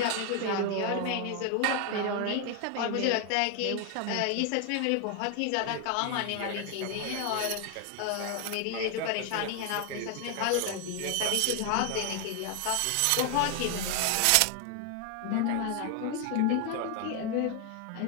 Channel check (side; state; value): both; different; correlation 0.01